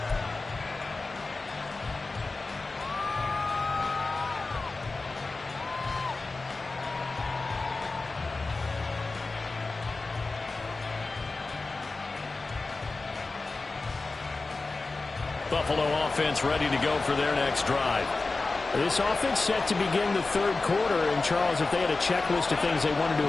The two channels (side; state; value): right; quieter; 3.6 dB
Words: Buffalo offense ready to go for their next drive. This offense set to begin the third quarter. And, Charles, if they had a checklist of things they wanted to